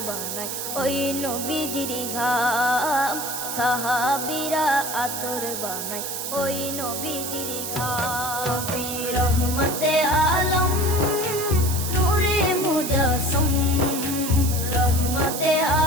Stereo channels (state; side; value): noise; right; hiss, 4 dB below the sound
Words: বানায় ওই নবীজির ঘাম, সাহাবীরা আতর বানায় ওই নবীজির ঘাম। নবী রহমতে আলম নূরে মুজস্সম, রহমতে